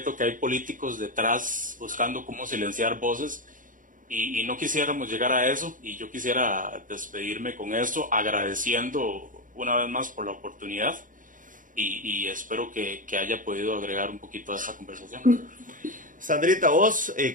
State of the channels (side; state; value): left; late; 0.39 ms